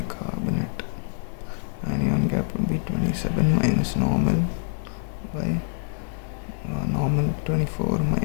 Anion gap would be 27 minus normal by normal 24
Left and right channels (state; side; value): silent; right; 61 dB below the other